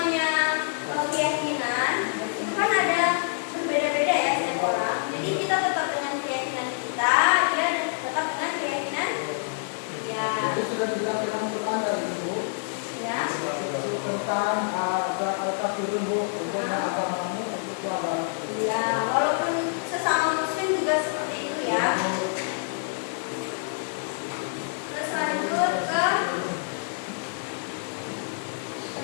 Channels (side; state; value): right; silent; digital silence